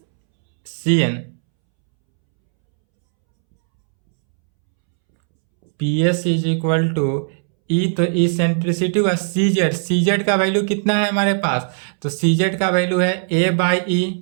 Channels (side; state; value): left; silent; 66 dB below the other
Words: C N. P S is equal to e, तो ई सेंट्रिसिटी हुआ सी जेड का वैल्यू कितना है हमारे पास, तो सी जेड का वैल्यू है ए बाई